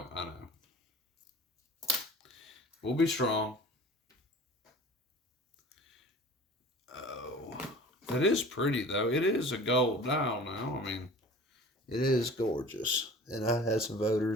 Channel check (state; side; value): normal; both; correlation 0.43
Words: We'll be strong. Oh, that is pretty though. It is a gold dial now. I mean, it is gorgeous. And I had some